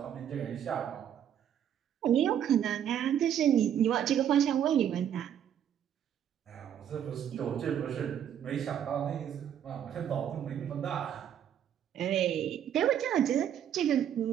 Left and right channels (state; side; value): quieter; left; 9.6 dB